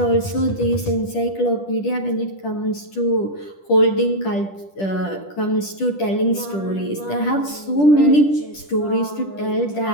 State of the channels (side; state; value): right; late; 10 ms